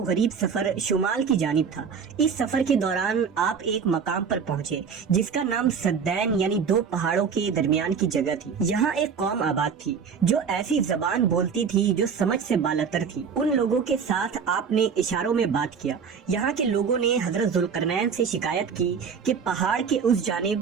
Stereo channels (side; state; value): left; quieter; 6.3 dB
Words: غریب سفر شمال کی جانب تھا۔ اس سفر کے دوران آپ ایک مقام پر پہنچے جس کا نام سدین یعنی 2 پہاڑوں کے درمیان کی جگہ تھی۔ یہاں ایک قوم آباد تھی جو ایسی زبان بولتی تھی جو سمجھ سے بالاتر تھی۔ ان لوگوں کے ساتھ آپ نے اشاروں میں بات کیا۔ یہاں کے لوگوں نے حضرت ذوالقرنین سے شکایت کی کہ پہاڑ کے اس